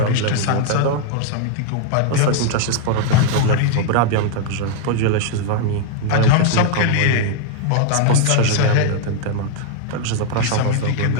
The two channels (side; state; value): both; different; correlation 0.00